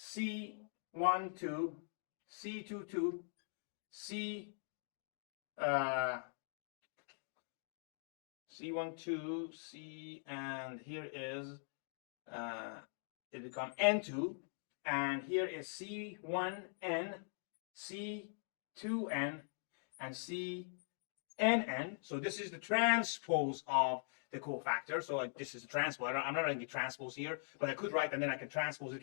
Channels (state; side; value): silent; right; digital silence